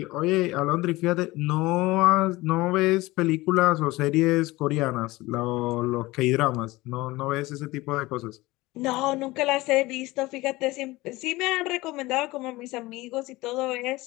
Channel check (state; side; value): quieter; right; 20.1 dB